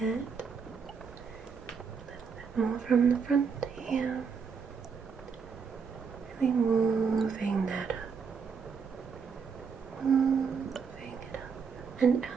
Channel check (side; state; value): left; quieter; 5.9 dB